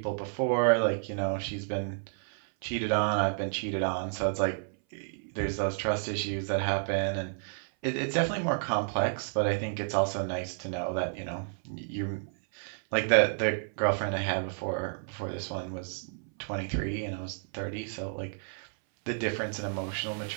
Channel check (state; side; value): silent; left; 57 dB below the other